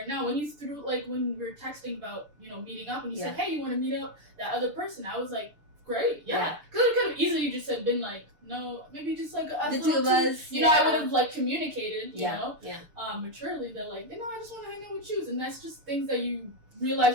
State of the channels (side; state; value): left; late; 6.8 ms